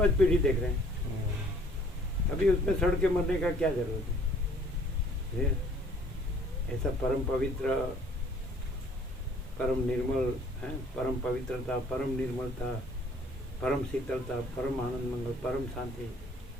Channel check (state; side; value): normal; both; correlation 0.58